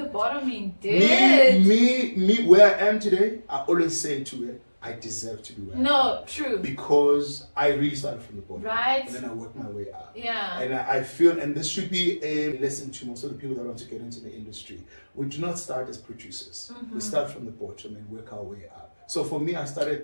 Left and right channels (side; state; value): both; inverted; correlation -1.00